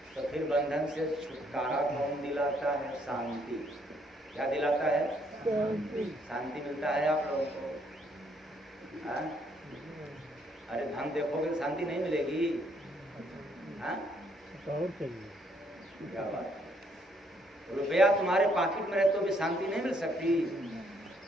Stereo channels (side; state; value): both; normal; correlation 0.69